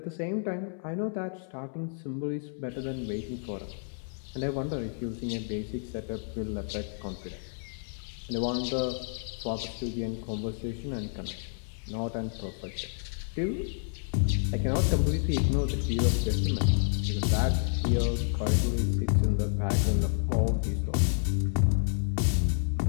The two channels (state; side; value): silent; right; 58 dB below the other